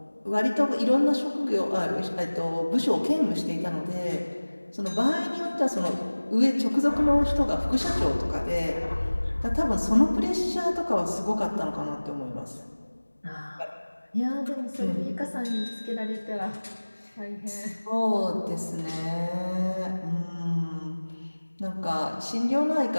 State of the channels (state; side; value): inverted; both; correlation -1.00